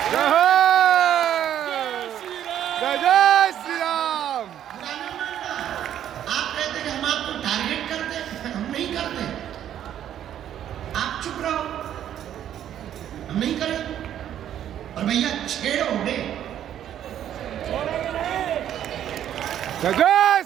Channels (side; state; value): left; quieter; 10.6 dB